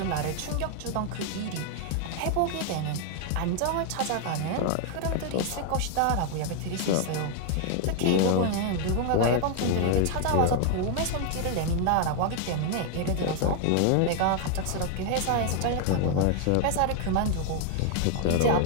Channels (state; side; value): different; both; correlation 0.00